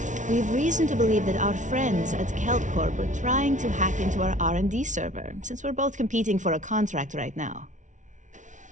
We've reason to believe that our friends at KelpCorp are trying to hack into our R&D server, since we're both competing for a contract right now.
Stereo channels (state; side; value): late; left; 0.37 ms